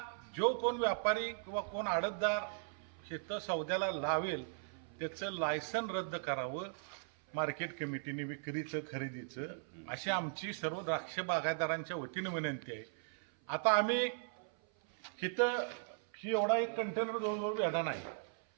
जो कोण व्यापारी किंवा कोण आडतदार इथं सौद्याला लावेल त्याचं लायसन रद्द करावं मार्केट कमिटीने विक्रीचं खरेदीचं, अशी आमची सर्व द्राक्ष बागायतदारांच्या वतीने विनंती आहे. आता आम्ही इथं ही एवढा एक कंटेनर जवळजवळ बेदाना आहे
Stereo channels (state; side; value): silent; left; 52 dB below the other